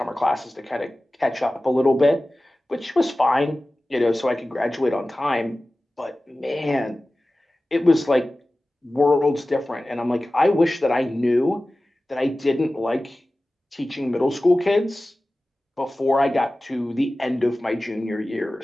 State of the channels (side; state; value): both; normal; correlation 0.96